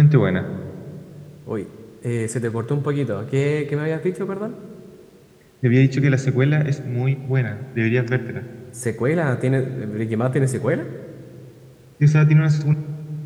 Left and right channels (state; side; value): identical; both; correlation 1.00